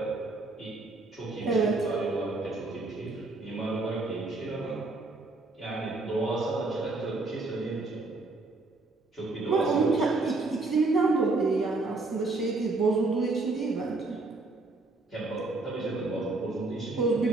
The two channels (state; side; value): quieter; left; 3.4 dB